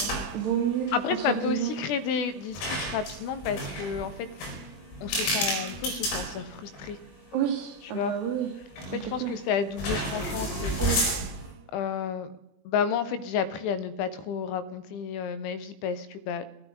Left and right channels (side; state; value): right; late; 21 ms